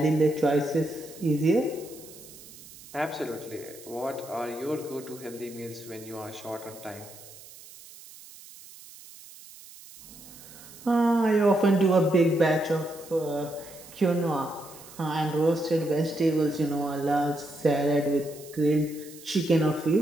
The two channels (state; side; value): noise; right; hiss, 19 dB below the sound